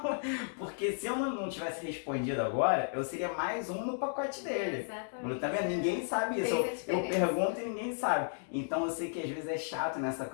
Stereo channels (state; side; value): silent; right; digital silence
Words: Porque se eu não tivesse respondido agora, eu seria mais um no pacote dele. Exatamente. Tá vendo? Ninguém sabe isso. Eu pergunto e ninguém sabe. Então eu sei que às vezes é chato nessa